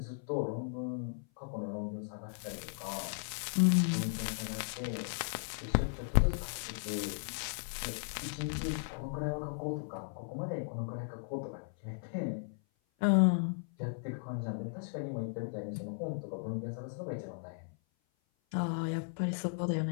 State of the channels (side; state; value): right; silent; 54 dB below the other